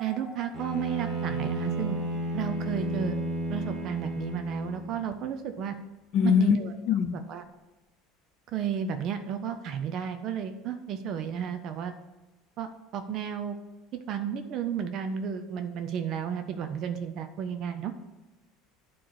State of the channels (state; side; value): normal; both; correlation 0.40